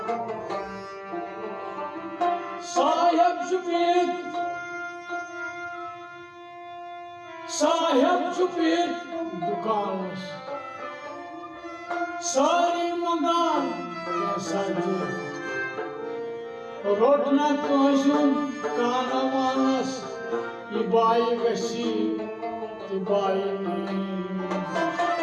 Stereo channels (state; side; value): identical; both; correlation 1.00